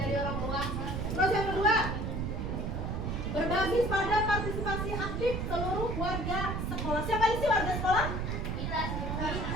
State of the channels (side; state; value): right; noise; rumble, 2 dB below the sound